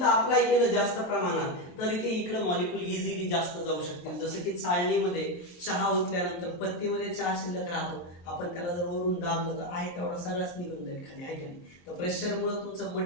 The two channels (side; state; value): right; late; 23 ms